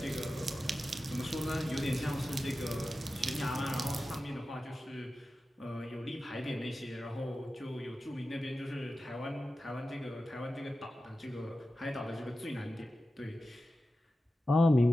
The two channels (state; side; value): normal; both; correlation 0.93